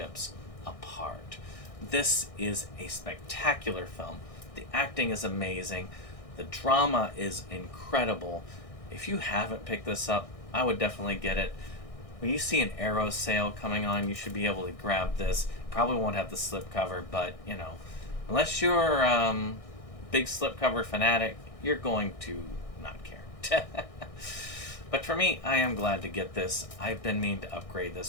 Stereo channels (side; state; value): right; late; 1.6 ms